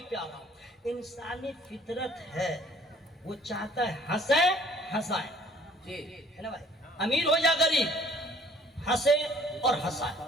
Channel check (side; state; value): both; normal; correlation 0.57